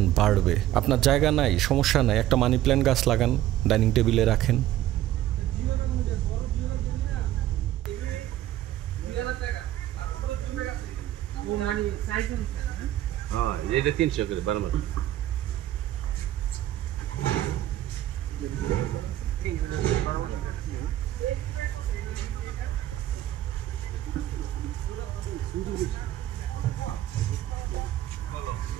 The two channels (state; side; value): quieter; left; 13.6 dB